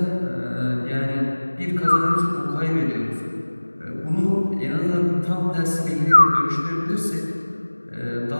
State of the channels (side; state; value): both; inverted; correlation -1.00